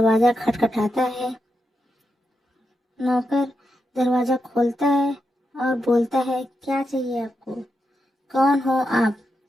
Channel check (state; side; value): normal; both; correlation 0.86